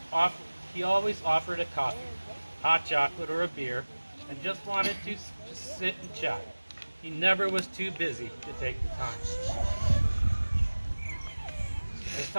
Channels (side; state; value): both; inverted; correlation -1.00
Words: he always offered a coffee, hot chocolate or a beer, and just wanted to just sit and chat. He never was too busy to take the time. As